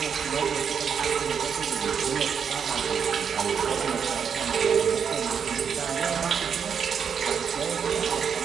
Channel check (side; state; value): left; quieter; 7.0 dB